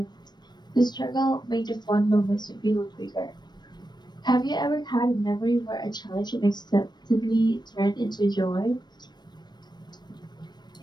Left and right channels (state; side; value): late; right; 0.21 ms